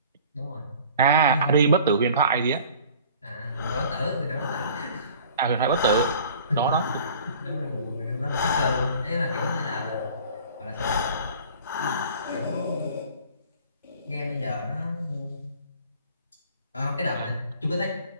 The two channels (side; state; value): both; inverted; correlation -0.48